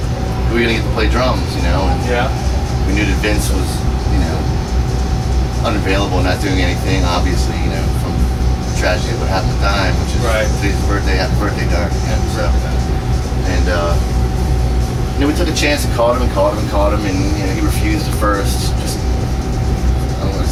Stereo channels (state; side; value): identical; both; correlation 1.00